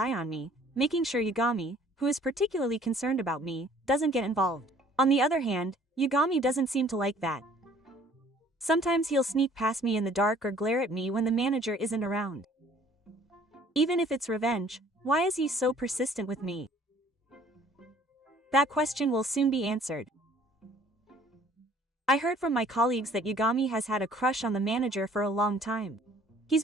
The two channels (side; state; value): both; normal; correlation 0.56